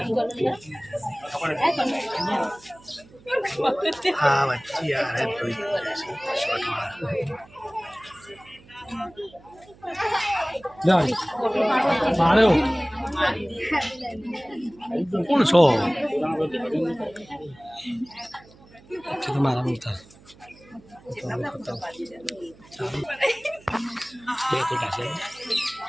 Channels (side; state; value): right; noise; hum, 25 dB below the sound